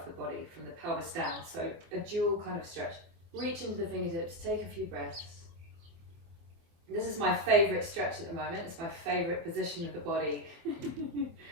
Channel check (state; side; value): late; left; 24 ms